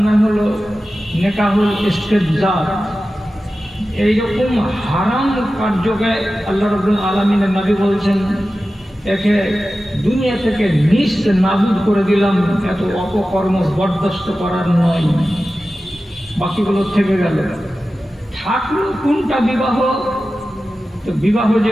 নাম হলো নেকাহুল ইস্তেবজার। এইরকম হারাম কার্যকে আল্লাহ রাব্বুল আলামিনের নবী বলছেন একে দুনিয়া থেকে নিস্ত নাবুদ করে দিলাম, এত অপকর্ম বরদাস্ত করার নয়। বাকিগুলো থেকে গেল। থাকলো কোনটা বিবাহ? তো বিবাহ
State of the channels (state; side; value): normal; both; correlation 0.94